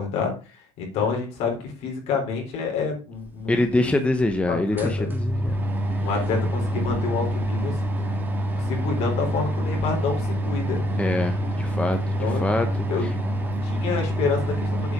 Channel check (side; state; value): both; normal; correlation 0.70